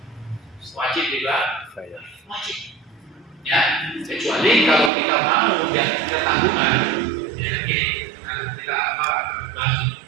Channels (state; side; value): drops out; left; at 4.9 s